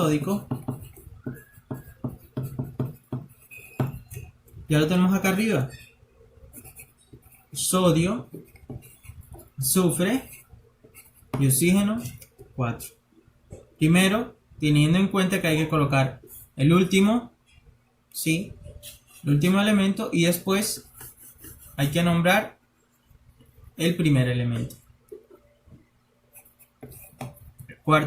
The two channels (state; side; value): identical; both; correlation 1.00